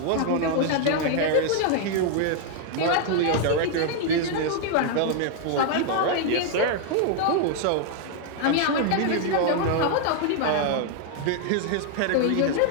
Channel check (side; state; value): both; different; correlation 0.00